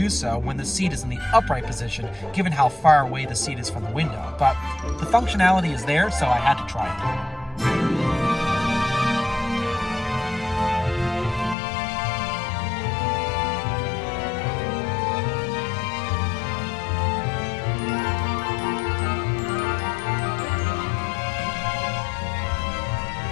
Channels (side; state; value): right; drops out; at 11.6 s